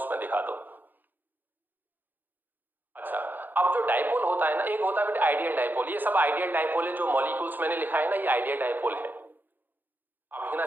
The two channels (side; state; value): left; late; 0.088 ms